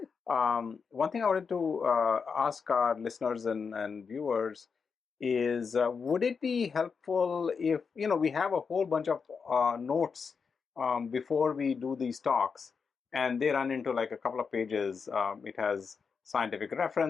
One thing I wanted to ask our listeners and viewers is, would it be helpful if, we have a whole bunch of notes before we do these talks, and they run into like a couple of pages. It has scientific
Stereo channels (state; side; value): quieter; right; 5.6 dB